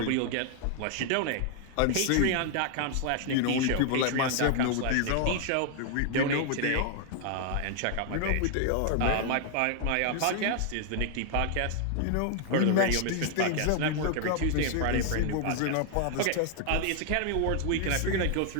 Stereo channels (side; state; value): both; different; correlation 0.00